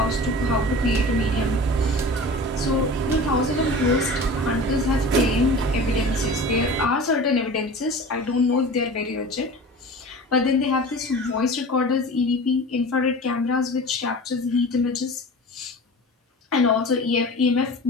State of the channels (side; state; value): both; normal; correlation 0.37